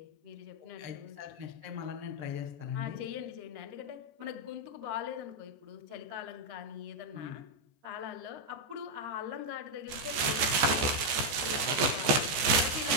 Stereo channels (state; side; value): late; left; 14 ms